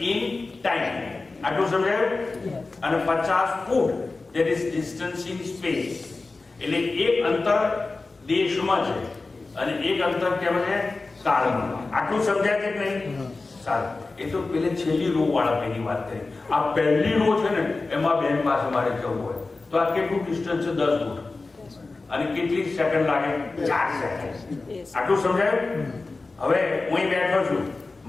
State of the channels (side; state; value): right; quieter; 3.6 dB